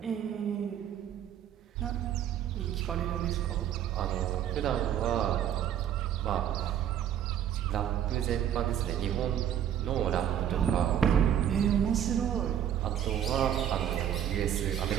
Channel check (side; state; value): left; quieter; 10.1 dB